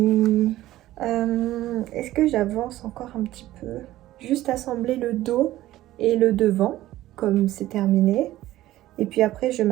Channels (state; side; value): quieter; left; 15.2 dB